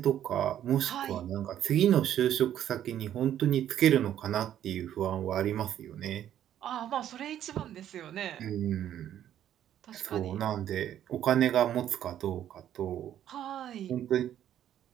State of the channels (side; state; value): left; quieter; 10.9 dB